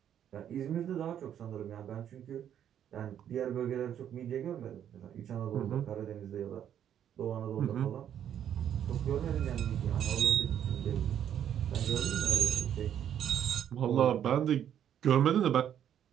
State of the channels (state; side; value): quieter; left; 9.8 dB